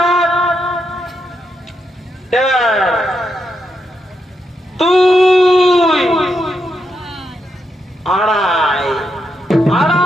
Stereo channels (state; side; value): normal; both; correlation 0.82